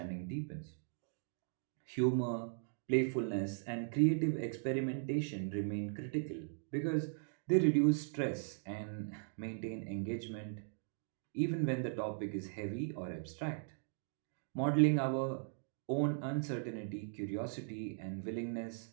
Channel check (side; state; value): left; silent; digital silence